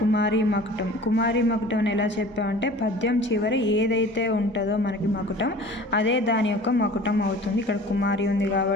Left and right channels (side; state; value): both; normal; correlation 0.43